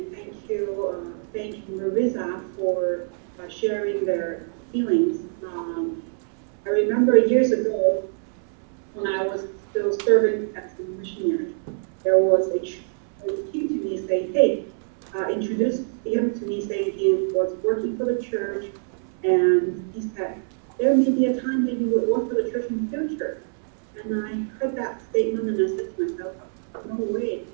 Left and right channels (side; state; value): left; silent; 62 dB below the other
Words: thank you, Marissa, for sharing their feelings. I remember years ago, when I was still serving as a missionary, there was a who came to me saying, hey, introduced him to me saying he was working for the church, and he said, there may be a time that you would work for the church in the future. And I heard that statement, and I said to myself, no way,